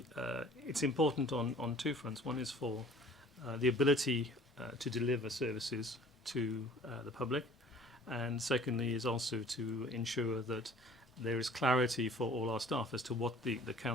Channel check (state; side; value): normal; both; correlation 0.51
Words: it's important on 2 fronts. One is for the ability to deliver services to the public, and secondly is also to ensure that there is clarity for all our staff as to what the